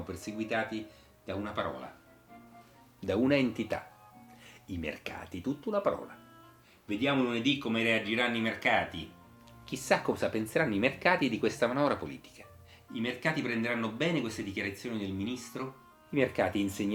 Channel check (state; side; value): identical; both; correlation 1.00